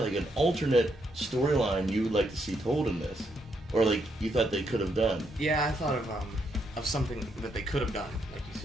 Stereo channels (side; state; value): both; normal; correlation 0.77